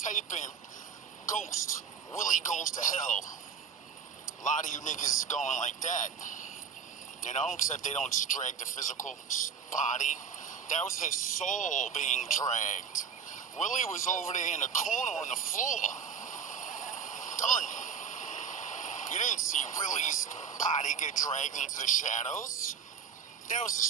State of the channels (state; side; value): quieter; left; 6.7 dB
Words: in Ghost. Willie goes to hell. A lot of you niggas is going like that. You know, except they don't just drag the physical body. That was his soul being dragged. Willie was over there in the corner on the floor. Done. You didn't see Willie's body get dragged into the shadows. That was his